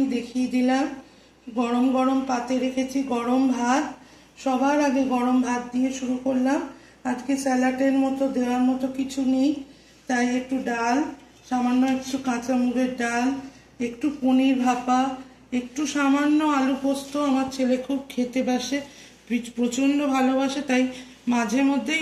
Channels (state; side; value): identical; both; correlation 1.00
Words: দেখিয়ে দিলাম। গরম গরম পাতে রেখেছি গরম ভাত। সবার আগে গরম ভাত দিয়ে শুরু করলাম। আজকে স্যালাডের মতো দেওয়ার মতো কিছু নেই, তাই একটু ডাল, সামান্য একটু কাঁচা মুগের ডাল, একটু পনির ভাপা, একটু সামান্য আলু পোস্ত। আমার ছেলে খুব খেতে বাসে, প্রচণ্ড ভালোবাসে, তাই মাঝে মধ্যেই